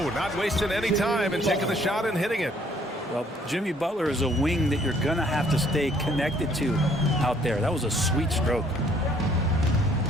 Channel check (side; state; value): both; normal; correlation 0.62